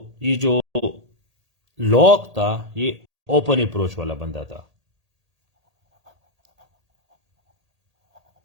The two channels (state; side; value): late; left; 1.8 ms